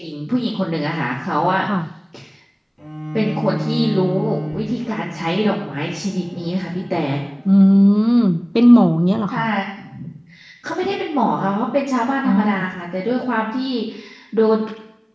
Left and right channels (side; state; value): both; identical; correlation 1.00